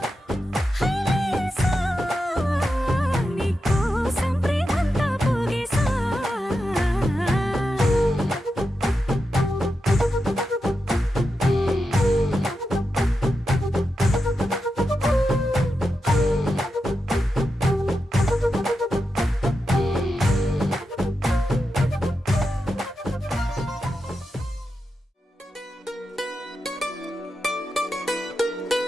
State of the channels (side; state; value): both; normal; correlation 0.88